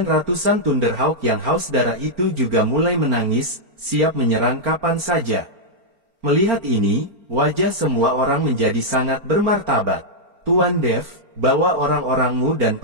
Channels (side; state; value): left; late; 4.4 ms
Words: ratusan Thunderhawk yang haus darah itu juga mulai menangis, siap menyerang kapan saja. Melihat ini, wajah semua orang menjadi sangat bermartabat. Tuan Dev, bawa orang-orangmu dan